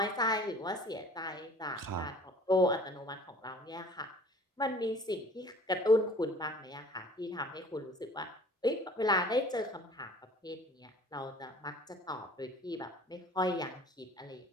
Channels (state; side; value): normal; both; correlation 0.49